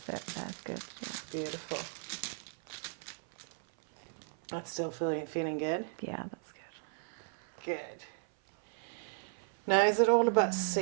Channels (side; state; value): left; silent; 54 dB below the other